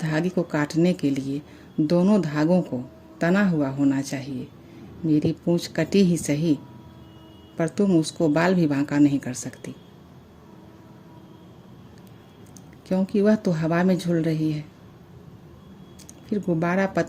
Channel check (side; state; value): both; identical; correlation 1.00